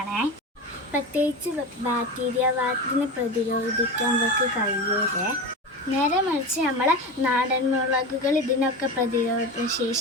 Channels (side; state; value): both; normal; correlation 0.25